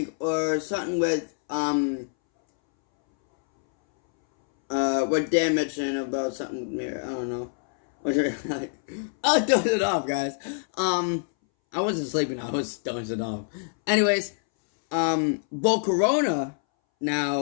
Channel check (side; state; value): right; silent; 61 dB below the other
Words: or something with what Dan mentioned about something with Mirror. I don't know. I'll dose it off, guys. I wasn't sleeping, I was dozing off. Anyways, Volcarona